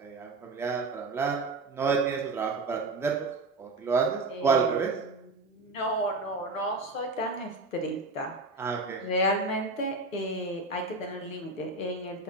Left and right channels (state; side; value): quieter; left; 3.2 dB